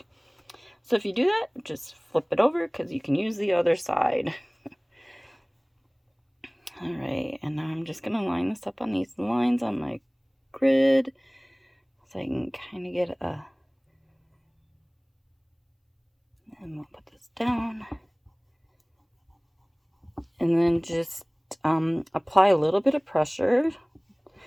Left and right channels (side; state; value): both; identical; correlation 1.00